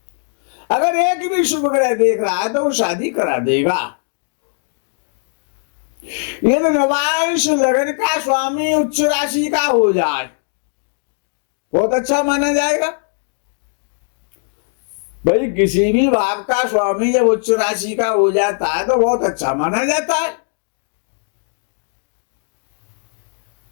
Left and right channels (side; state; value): right; silent; 65 dB below the other